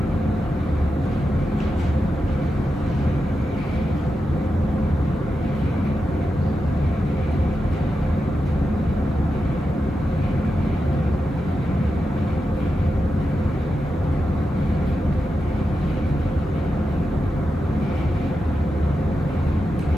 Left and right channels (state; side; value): normal; both; correlation 0.89